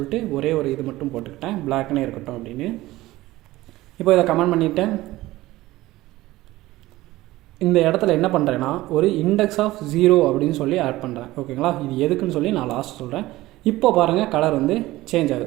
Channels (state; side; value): quieter; left; 17.6 dB